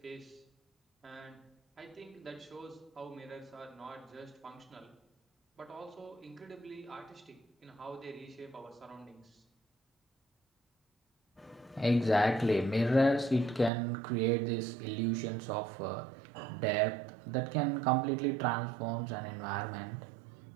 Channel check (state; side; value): drops out; left; at 13.7 s